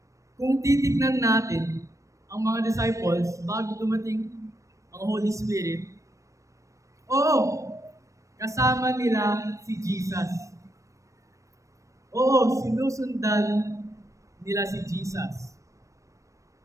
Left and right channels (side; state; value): left; late; 0.15 ms